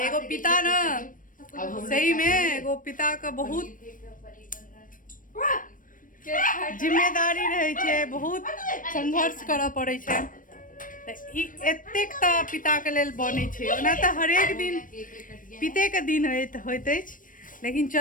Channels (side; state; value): right; late; 0.39 ms